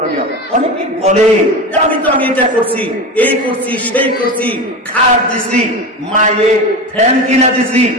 অনেকে বলে আমি এটা করছি, এই করছি, সেই করছি, খাট দিছি, মায়ে ফ্যান কিনা দিছি,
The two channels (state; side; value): normal; both; correlation 0.25